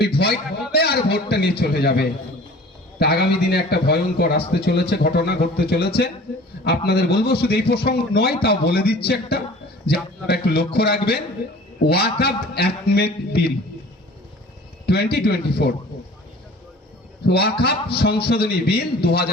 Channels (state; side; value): normal; both; correlation 0.45